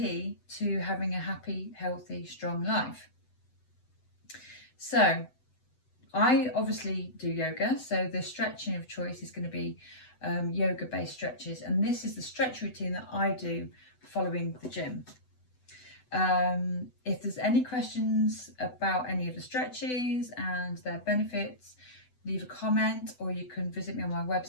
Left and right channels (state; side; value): late; right; 8.0 ms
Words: to having a happy, healthy, strong life. So I obviously do yoga, so the stretching of choice is going to be yoga based stretches, and this is the stretch routine that I do following the gym. If there's any questions about any of the stretches and their benefits, leave a comment, or you can visit me on my